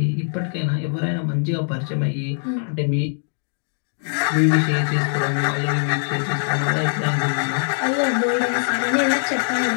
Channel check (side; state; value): right; silent; digital silence